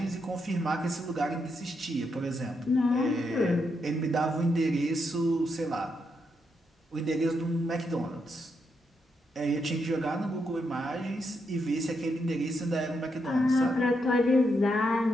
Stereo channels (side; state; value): both; normal; correlation 0.81